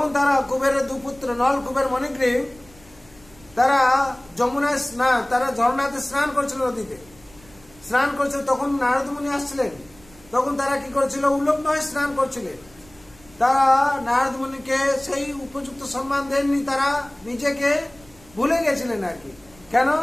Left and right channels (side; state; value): right; noise; rumble, 26 dB below the sound